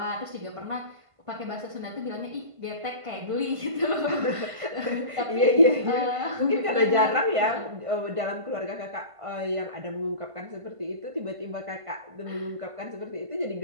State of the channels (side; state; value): left; late; 1.5 ms